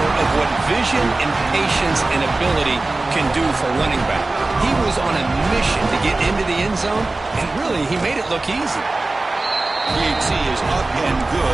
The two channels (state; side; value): quieter; left; 3.1 dB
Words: of what vision and patience and ability can do for running back. He was on a mission to get into the end zone, and really, he made it look easy. PAT is up and